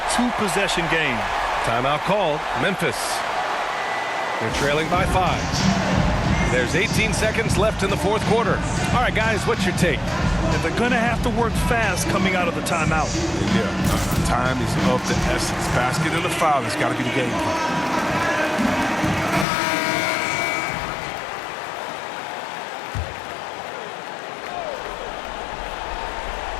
2-possession game. Timeout called. Memphis. They're trailing by 5. There's 18 seconds left in the fourth quarter. All right, guys, what's your take? And they're going to have to work fast coming out of the timeout. Yeah, time is of the essence. Basket and the foul has got to be the game plan.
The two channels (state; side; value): drops out; right; at 19.5 s